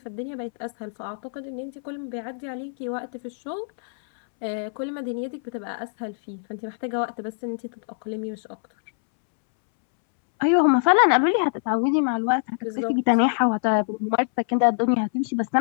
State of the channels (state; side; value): silent; right; 62 dB below the other